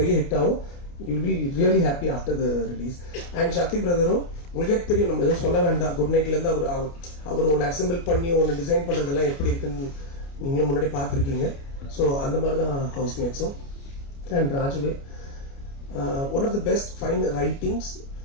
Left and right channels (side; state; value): right; late; 29 ms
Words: ஹிட் ஆகும். You will be really happy after the release. And Sakthi பிரதரும் உங்களுக்கே தெரியும், நம்ம எதுவும் சொல்ல வேண்டாம். குட் நைட்லேருந்து அவர் ஒன்று அசெம்பிள் பண்ணி ஒன்று டிசைன் பண்ணுறதெல்லாம் எப்படி இருக்குன்னு நீங்கள் முன்னாடி பார்த்துருக்கீங்க. ஸோ அந்த மாதிரி தான் ஹவுஸ்மேட்ஸும். அண்ட் ராஜுவே one of the best fine writings.